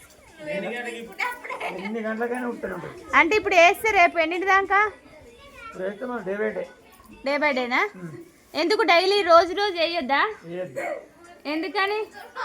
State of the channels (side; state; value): both; identical; correlation 1.00